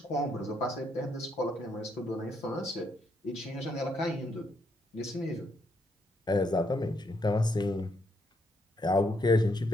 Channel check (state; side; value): normal; both; correlation 0.75